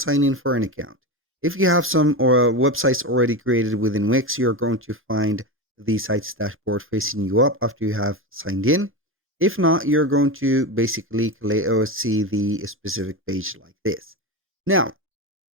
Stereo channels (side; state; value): both; normal; correlation 0.19